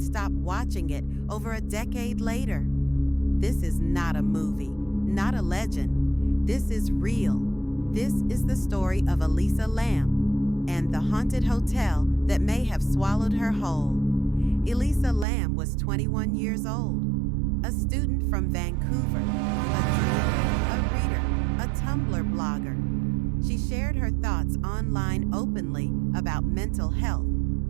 stop watching it over a decade later? This is not a movie, not a legend. This is real. This is the story of Elisa Lam and the haunted hotel that may have swallowed her whole. Elisa Lam was 21 years old, a student from Vancouver, a dreamer, a reader, a Tumblr blogger. She shared her thoughts online openly about mental health,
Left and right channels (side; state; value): left; drops out; at 15.2 s